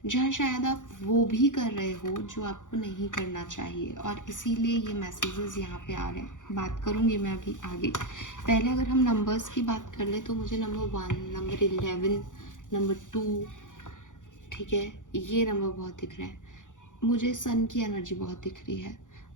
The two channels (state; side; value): late; right; 0.87 ms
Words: आप वो भी कर रहे हो जो आपको नहीं करना चाहिए, और इसीलिए ये मैसेजेस यहाँ पे आ रहे हैं। बात करूँगी मैं अभी आगे। पहले अगर हम नंबर्स की बात कर ले तो मुझे नंबर 1, नंबर 11, नंबर 2, ठीक है, ये नंबर बहुत दिख रहे हैं। मुझे सन की एनर्जी बहुत दिख रही है।